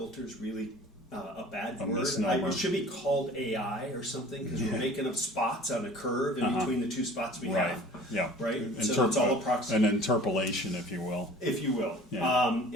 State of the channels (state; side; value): normal; both; correlation 0.46